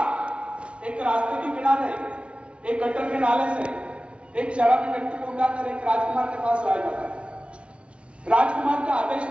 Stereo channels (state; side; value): late; left; 0.060 ms